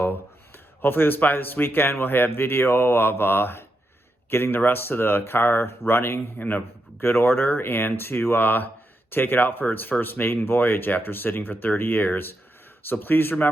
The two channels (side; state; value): both; normal; correlation 0.85